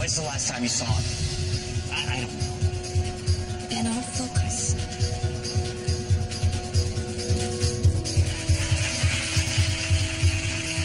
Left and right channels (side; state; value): both; identical; correlation 1.00